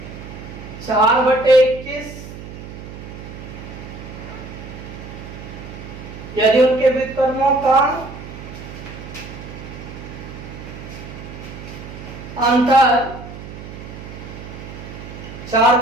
4/21, यदि उनके व्युत्क्रमों का अंतर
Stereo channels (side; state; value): right; noise; hum, 12 dB below the sound